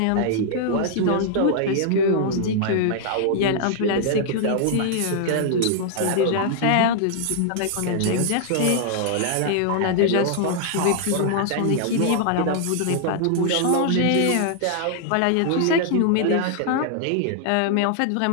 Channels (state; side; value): different; both; correlation -0.01